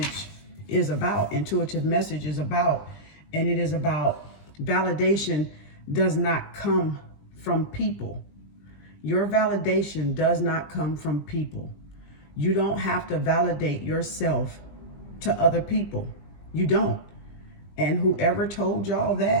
is about. Intuitive message is about, and it is about validation does not come from people. Your validation does not come from people. You don't have to validate yourself to other people. You don't. And whoever told y'all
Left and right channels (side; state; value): right; late; 20 ms